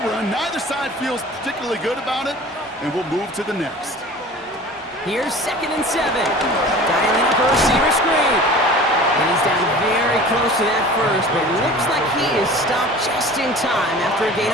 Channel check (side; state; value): both; normal; correlation 0.41